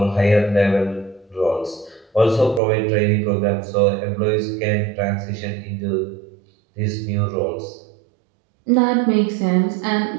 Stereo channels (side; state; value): left; drops out; at 2.6 s